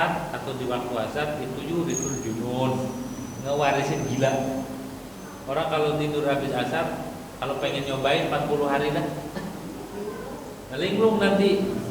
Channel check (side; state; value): both; identical; correlation 1.00